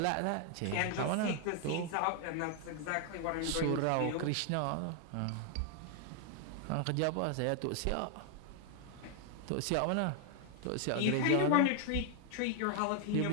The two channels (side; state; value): both; different; correlation 0.00